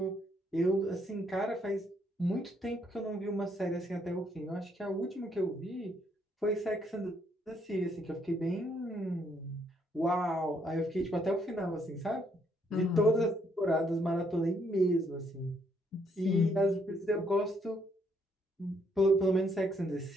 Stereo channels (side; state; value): both; normal; correlation 0.71